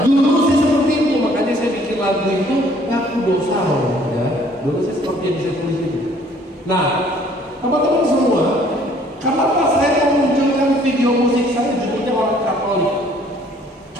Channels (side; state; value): both; normal; correlation 0.59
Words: Dulu sih seperti itu, makanya saya bikin lagu itu ngaku dosa loh, ya. Dulu sih seperti yang saya tulis itu. Nah, teman-teman semua, kenapa saya memunculkan video musik saya judulnya orang Katolik?